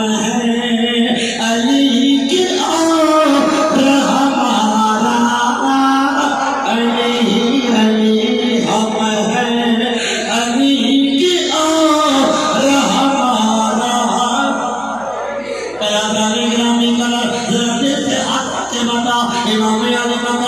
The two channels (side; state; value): right; noise; hum, 29 dB below the sound